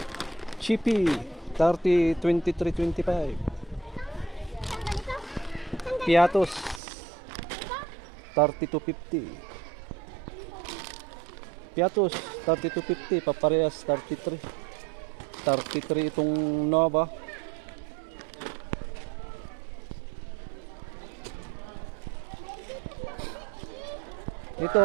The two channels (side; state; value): left; drops out; at 6.8 s